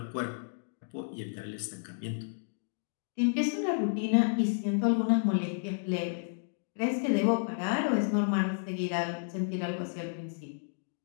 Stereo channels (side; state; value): right; silent; digital silence